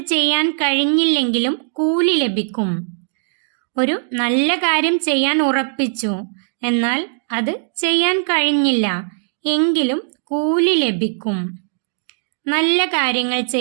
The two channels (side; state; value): left; silent; digital silence